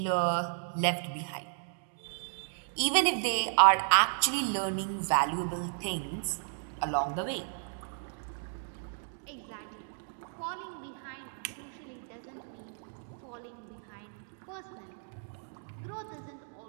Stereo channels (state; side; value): silent; left; digital silence